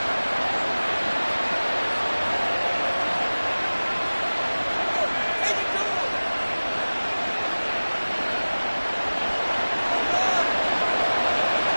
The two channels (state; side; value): inverted; both; correlation -1.00